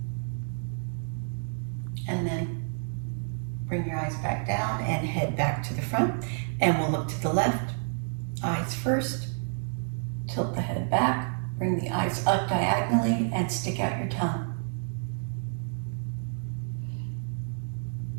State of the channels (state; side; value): silent; left; digital silence